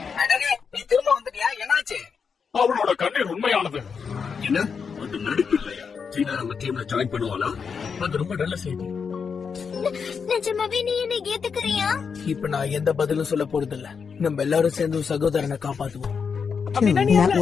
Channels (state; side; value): quieter; right; 6.0 dB